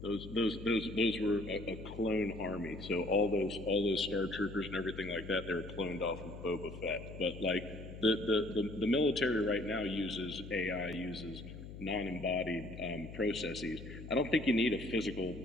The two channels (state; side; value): noise; left; hum, 12 dB below the sound